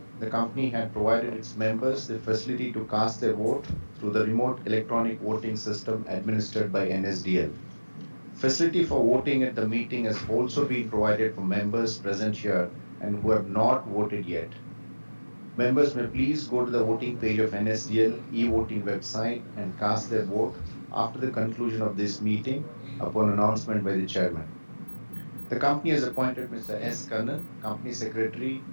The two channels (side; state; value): both; inverted; correlation -1.00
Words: the company had provided its members the facility to cast their vote through the remote electronic voting system administered by NSDL. Facility for voting at the meeting has also been provided for members present here and who have not voted yet. Members may please go to the voting page of NSDL e-voting website and cast their vote after the conclusion of this meeting upon announcement by the chairman. The company has appointed Mr. S. Kannan, Company Secretary